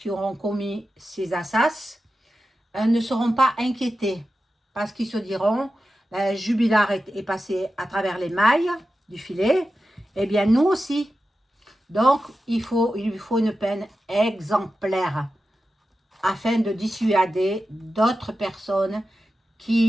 auront commis ces assassinats ne seront pas inquiétés. Parce qu'ils se diront, Jubilard est passé à travers les mailles du filet. Eh bien, nous aussi, Donc, il lui faut une peine exemplaire afin de dissuader d'autres personnes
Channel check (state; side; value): normal; both; correlation 0.92